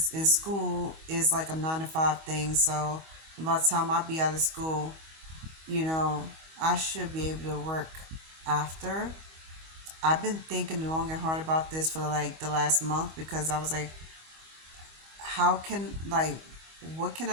in school is like a 9 to 5 thing. So by the time I be out of school, I should be able to work after. I've been thinking long and hard about this for like the last month because I was like, how can like what can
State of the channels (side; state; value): left; late; 25 ms